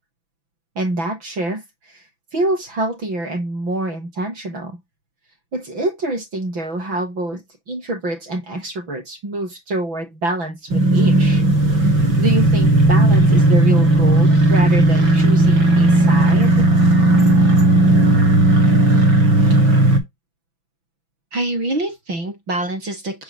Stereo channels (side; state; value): left; late; 6.0 ms